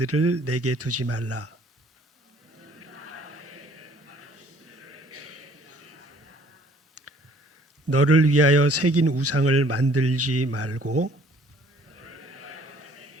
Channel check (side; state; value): both; normal; correlation 0.57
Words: 내게 두지 말라. 너를 위하여 새긴 우상을 만들지 말고